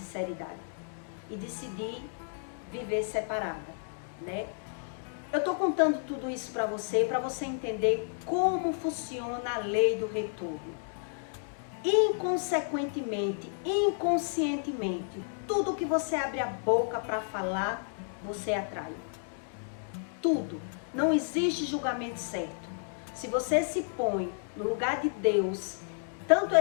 E decidi viver separada, né? Eu estou contando tudo isso para você entender como funciona a lei do retorno. Inconsequentemente, inconscientemente, tudo que você abre a boca para falar, você atrai. Tudo. Não existe julgamento certo. Se você se põe no lugar de Deus, tanto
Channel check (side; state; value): right; silent; digital silence